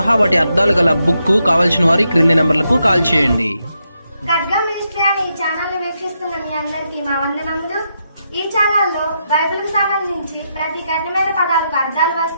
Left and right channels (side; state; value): both; inverted; correlation -0.82